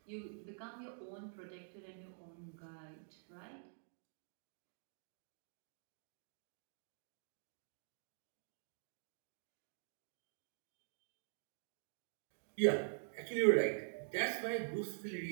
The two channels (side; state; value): left; silent; digital silence